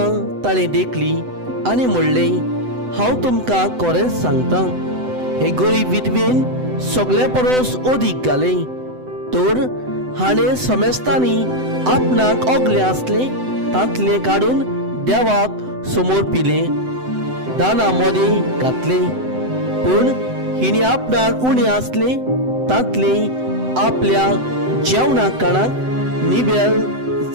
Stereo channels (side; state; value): left; late; 7.9 ms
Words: ताणें देखली आनी म्हणलें, हांव तुमकां खरेंच सांगतां, हे गरीब विधवेन सगळे परस अदीक घालें. तर हाणें समेस्तांनी आपणाक ओगलें आसलें तांतलें काडून देवाक समोर पिलें, दाना मदें घातलें. पूण हिणें आपणाक उणें आसलें तांतलें आपल्या जेवणाक काणाक निबेल